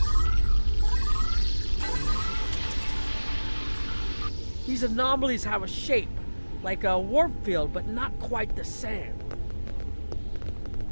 These anomalies have a shape, like a warp field, but not quite the same.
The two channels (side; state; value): both; inverted; correlation -1.00